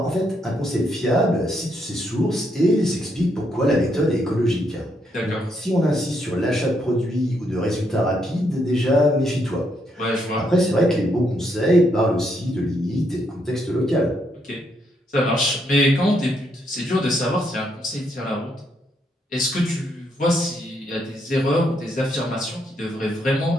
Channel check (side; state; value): both; normal; correlation 0.76